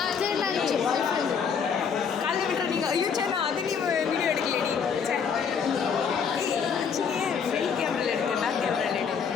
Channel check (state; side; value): quieter; right; 6.6 dB